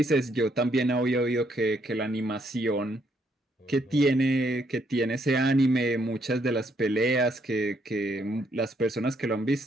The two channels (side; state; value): both; normal; correlation 0.72